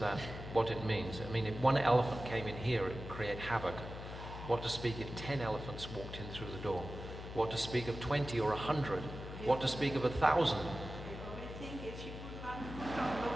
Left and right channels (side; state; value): left; noise; hum, 10 dB below the sound